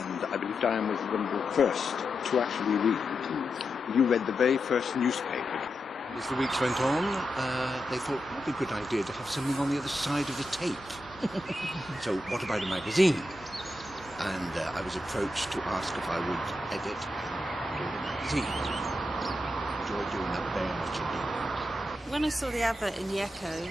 I believe Diane was one of the first to actually read. You read the very first newspaper. As the weeks went on, they thought it would be a good idea to have something on the other side of the tape. So what about a magazine? And I was approached to ask if I would edit and do the magazine. I enjoyed doing that very much indeed. When I saw the advert in the Echo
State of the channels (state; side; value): normal; both; correlation 0.87